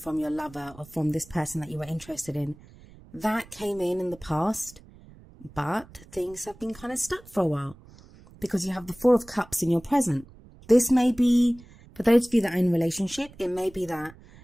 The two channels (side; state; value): right; noise; rumble, 23 dB below the sound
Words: your lover or from this person that you were interested in, that came in the past. But things have been kind of stuck for a while because you have the 4 of Cups in your present. This may be, for those of you that are in a relationship, it may be that